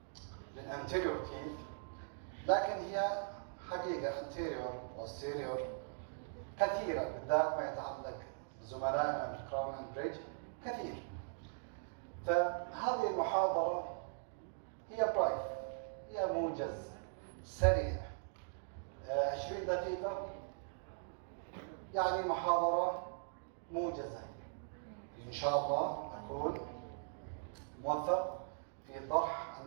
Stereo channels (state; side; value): silent; left; digital silence